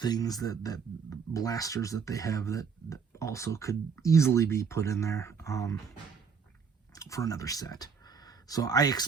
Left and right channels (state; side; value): quieter; left; 6.0 dB